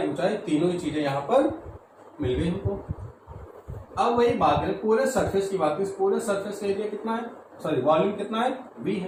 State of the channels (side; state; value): both; identical; correlation 1.00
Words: ऊंचाई तीनों ही चीजें यहाँ पर मिल गई हमको। अब वही बात करें पूरे सरफेस की बात करें, पूरे सरफेस का एरिया कितना है, सॉरी वॉल्यूम कितना है, V